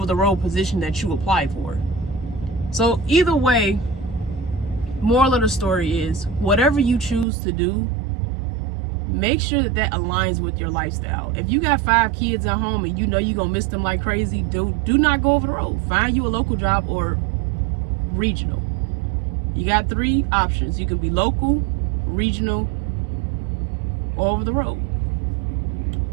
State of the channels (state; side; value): drops out; left; at 7.2 s